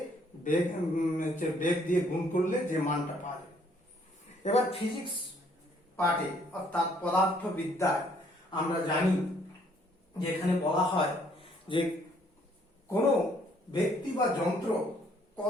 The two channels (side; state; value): both; normal; correlation 0.65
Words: বেগ দিয়ে গুণ করলে যে মানটা পাওয়া যায়। এবার ফিজিক্স পার্টে অর্থাৎ পদার্থবিদ্যায় আমরা জানি যে এখানে বলা হয় যে কোনো ব্যক্তি বা যন্ত্র